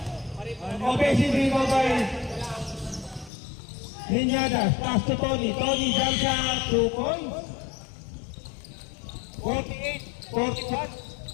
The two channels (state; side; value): drops out; right; at 3.3 s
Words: Okay, sige pa ba Meñadas. Pasto Tony. Tony jump shot. 2 points. 48-41.